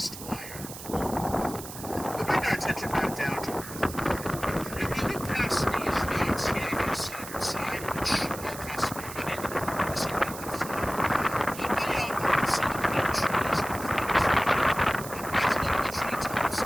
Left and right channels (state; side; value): noise; right; hiss, 12 dB below the sound